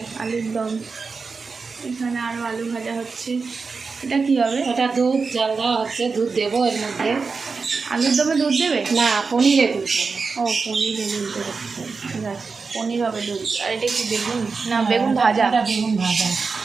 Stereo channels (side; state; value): left; quieter; 4.7 dB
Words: আলুর দম। এখানে আরও আলু ভাজা হচ্ছে। এটা কি হবে? ওটা দুধ জাল দেওয়া হচ্ছে, দুধ দেবো এর মধ্যে। আলুর দমে দুধ দেবে? না, পনিরে দুধ দেবো। ও, পনিরে দুধ দেবে, ঠিক আছে। পনির হবে দুধ। আর এটা কি বেগুন? না, বেগুন ভাজা। এটা বেগুন ভাজা।